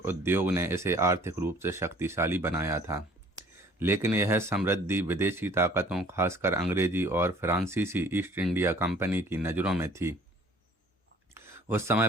ने इसे आर्थिक रूप से शक्तिशाली बनाया था। लेकिन यह समृद्धि विदेशी ताकतों, खासकर अंग्रेजी और फ्रांसीसी ईस्ट इंडिया कंपनी की नज़रों में थी। उस समय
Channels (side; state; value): both; normal; correlation 0.54